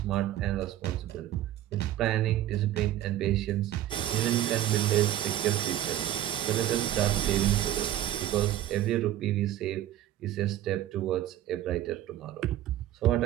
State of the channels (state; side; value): quieter; left; 12.9 dB